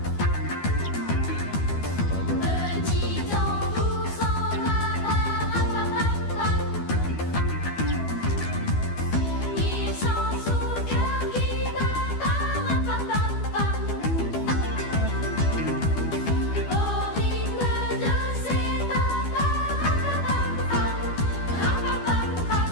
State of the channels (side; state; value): right; late; 12 ms